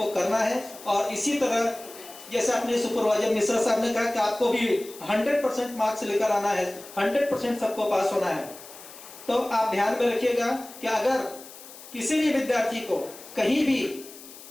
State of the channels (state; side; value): noise; left; hiss, 17 dB below the sound